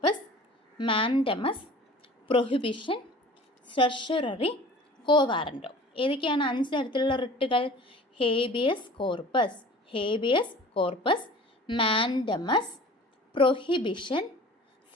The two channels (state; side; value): normal; both; correlation 0.44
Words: മാൻഡമസ്, പ്രൊഹിബിഷൻ, സെർഷ്യററി, കോ വാറൻറ്റോ. ഏതൊക്കെയാണ് 5 തരത്തിലുള്ള റിട്ടുകൾ? ഹേബിയസ് കോർപ്പസ്, മാൻഡമസ്, പ്രൊഹിബിഷൻ,